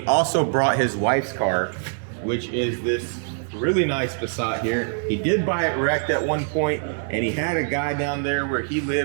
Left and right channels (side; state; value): left; silent; 59 dB below the other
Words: also brought his wife's car, which is this really nice Passat here. He did buy it wrecked at one point, and he had a guy down there where he